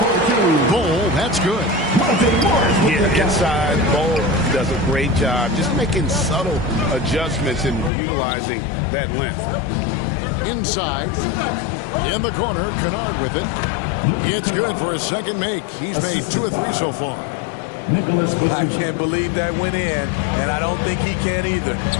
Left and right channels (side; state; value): right; drops out; at 7.9 s